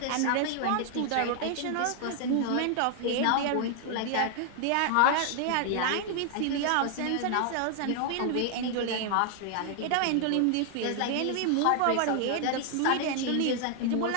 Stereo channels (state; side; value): different; both; correlation 0.00